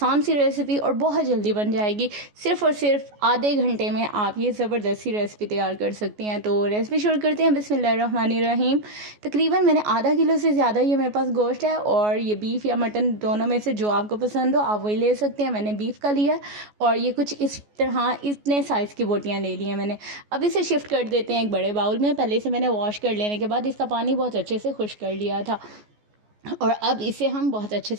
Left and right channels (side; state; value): left; late; 14 ms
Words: सी रेसिपी और बहुत जल्दी बन जाएगी। सिर्फ़ और सिर्फ आधे घंटे में आप ये ज़बरदस्ती रेसिपी तैयार कर सकते हैं। तो रेसिपी शुरू करते हैं। बिस्मिल्लाहिर्रहमानिर्रहीम। तकरीबन मैंने आधा किलो से ज़्यादा ये मेरे पास गोश्त है, और ये बीफ या मटन दोनों में से जो आपको पसंद हो आप वही ले सकते हैं। मैंने बीफ का लिया और ये कुछ इस तरह इतने साइज़ की बोटियाँ ले ली हैं मैंने। अब इसे शिफ्ट कर देते हैं एक बड़े बाउल में। पहले से मैंने वॉश कर लेने के बाद इसका पानी बहुत अच्छे से खुश्क कर लिया था, और अब इसे हम बहुत अच्छे